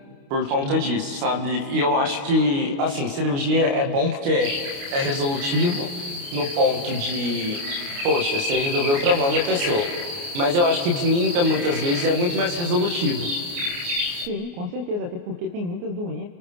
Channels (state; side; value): late; left; 29 ms